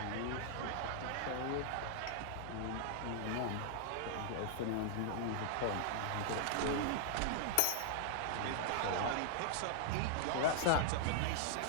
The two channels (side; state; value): both; different; correlation -0.01